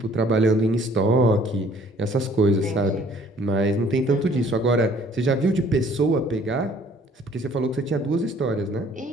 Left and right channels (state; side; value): normal; both; correlation 0.57